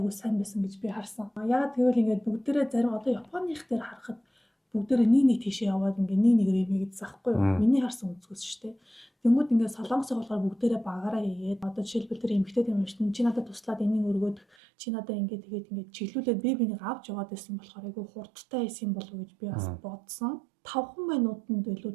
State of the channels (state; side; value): drops out; left; at 14.5 s